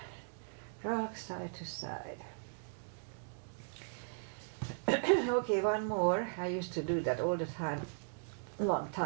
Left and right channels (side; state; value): left; silent; digital silence